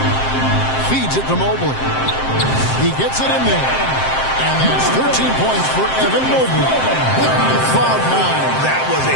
Feeds it to Mobley. He gets it in there. And that's 13 points for Evan Mobley. Cloud 9. That was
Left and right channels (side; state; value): right; late; 7.6 ms